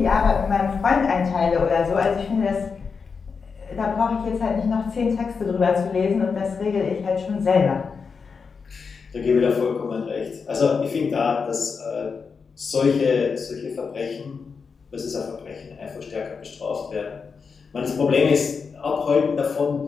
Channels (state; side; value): quieter; right; 5.4 dB